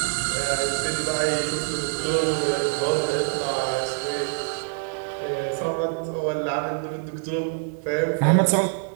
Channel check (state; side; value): silent; left; digital silence